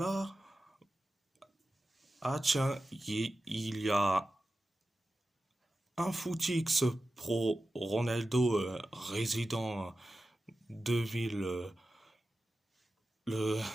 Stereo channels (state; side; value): normal; both; correlation 0.93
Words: Ah tiens, il y a un footix pro Ronaldo résident de ville. Le...